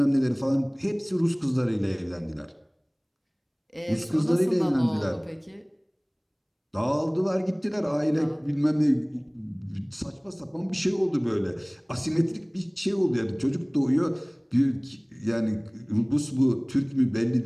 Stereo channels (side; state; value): both; identical; correlation 1.00